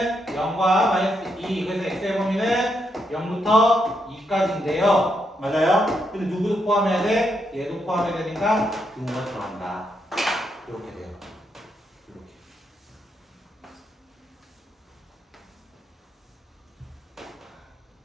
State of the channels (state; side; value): normal; both; correlation 0.80